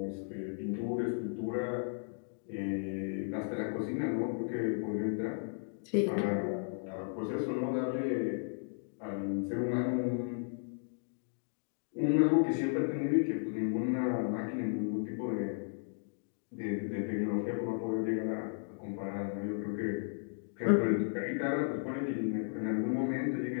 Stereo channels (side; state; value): right; silent; digital silence